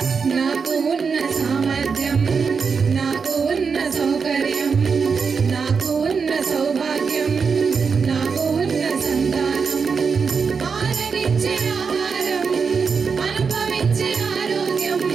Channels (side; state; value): left; quieter; 5.6 dB